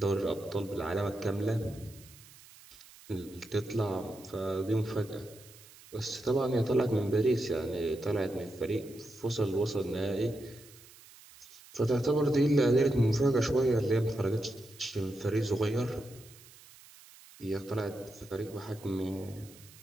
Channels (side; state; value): right; noise; hiss, 22 dB below the sound